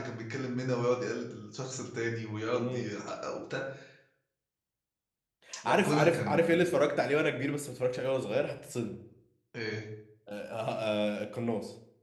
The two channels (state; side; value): identical; both; correlation 1.00